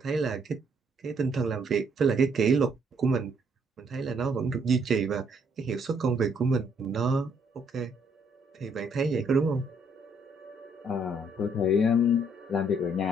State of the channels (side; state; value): both; normal; correlation 0.68